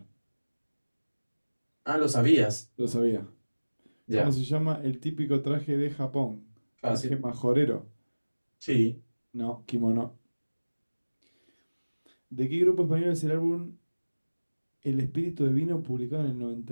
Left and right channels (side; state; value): both; inverted; correlation -1.00